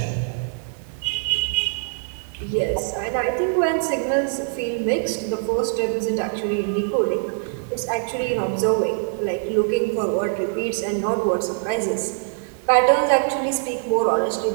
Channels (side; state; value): left; silent; digital silence